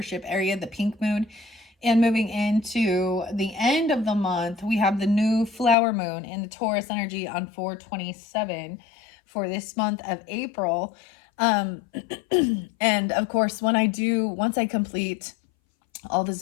area, the pink moon. And moving into the end of the month, we have the new flower moon in the Taurus energy on 427 for this month of April. And of course, once I complete all the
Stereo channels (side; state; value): right; drops out; at 5.8 s